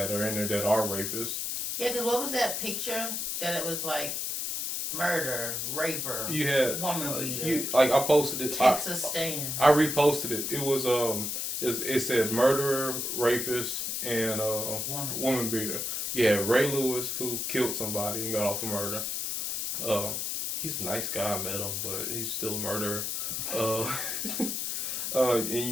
are in there that are rapists. Yeah, because what was that picture that it was like murder, raper, You had woman beater, I posted it. Texas stand. I reposted it. It was it said murderer, rapist, and woman beater. Yeah, Ray Lewis who killed somebody and got off of murder. He's a nice guy. I met him, but he's still a murderer. And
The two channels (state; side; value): noise; left; hiss, 2 dB below the sound